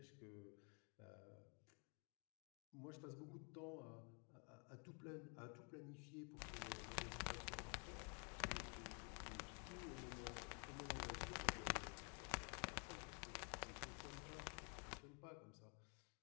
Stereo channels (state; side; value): quieter; right; 38.0 dB